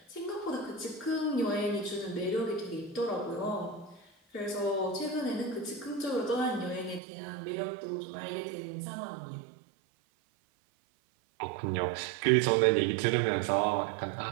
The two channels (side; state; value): left; drops out; at 7.0 s